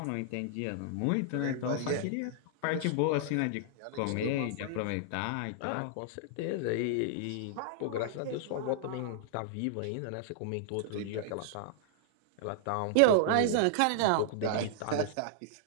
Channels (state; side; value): different; both; correlation -0.01